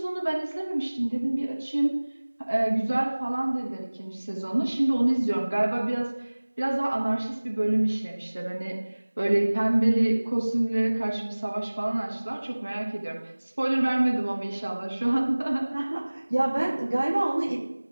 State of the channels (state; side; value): inverted; both; correlation -1.00